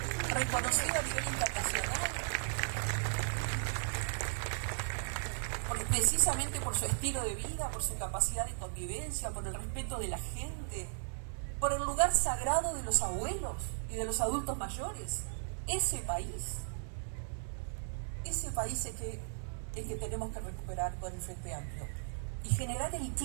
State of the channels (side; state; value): left; silent; 54 dB below the other